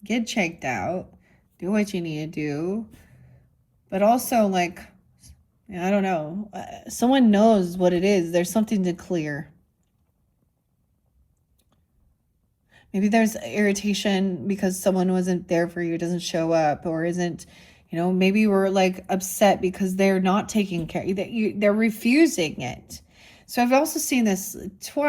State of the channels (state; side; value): identical; both; correlation 1.00